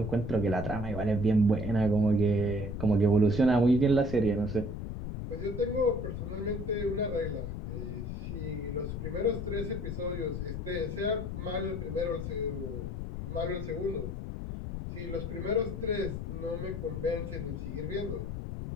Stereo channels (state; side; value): noise; left; rumble, 5 dB below the sound